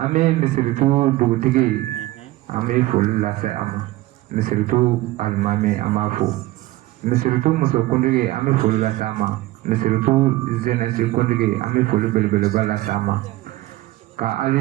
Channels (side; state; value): left; quieter; 17.7 dB